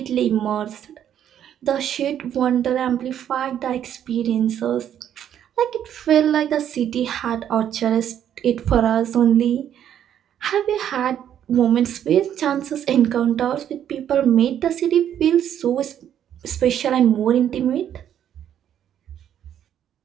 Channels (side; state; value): left; quieter; 10.0 dB